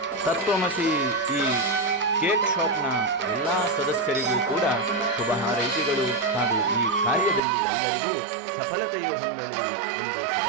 ತತ್ವಮಸಿ ಈ ಕೇಕ್ ಶಾಪ್ನ ಎಲ್ಲ ಸದಸ್ಯರಿಗೂ ಕೂಡ ಶುಭ ಹಾರೈಕೆಗಳು ಹಾಗೂ ಈ ಕಾರ್ಯದಲ್ಲಿ ಎಲ್ಲರಿಗೂ ಸಫಲತೆಯು ಹೊಂದಲಿ ಎಂದು ಶುಭ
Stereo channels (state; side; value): drops out; left; at 7.4 s